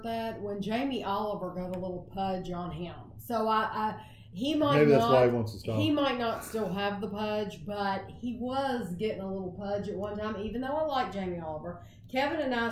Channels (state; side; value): identical; both; correlation 1.00